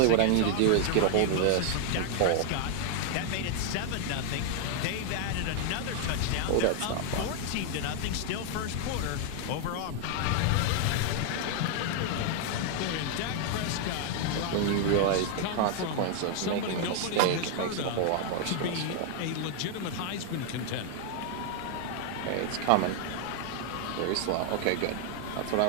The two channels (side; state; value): both; different; correlation 0.00